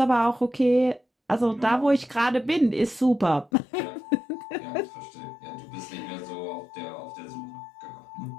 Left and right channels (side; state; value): right; drops out; at 3.5 s